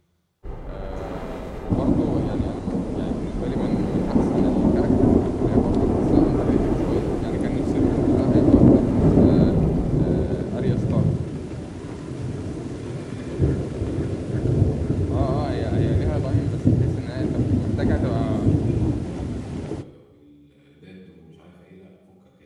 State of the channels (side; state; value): both; identical; correlation 1.00